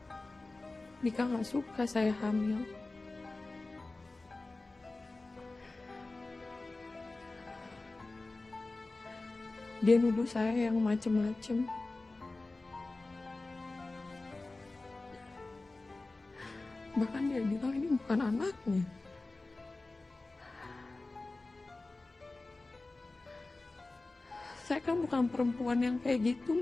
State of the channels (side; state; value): right; quieter; 3.2 dB